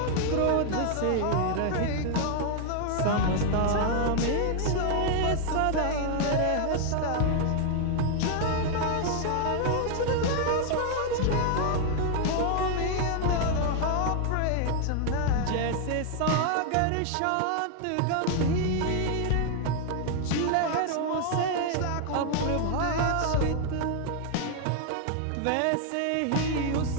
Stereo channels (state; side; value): different; both; correlation 0.00